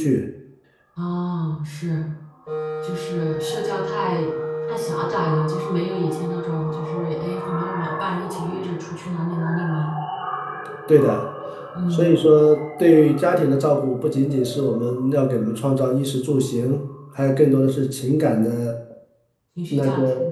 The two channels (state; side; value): identical; both; correlation 1.00